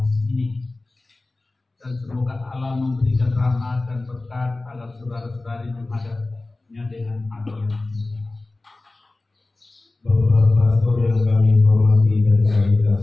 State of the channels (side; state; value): right; quieter; 3.1 dB